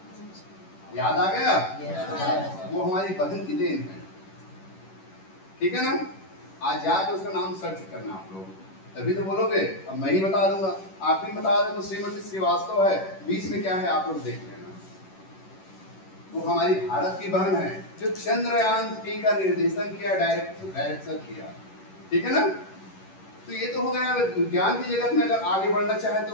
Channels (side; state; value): right; late; 11 ms